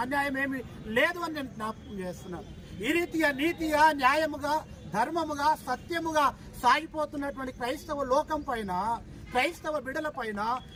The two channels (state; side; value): identical; both; correlation 1.00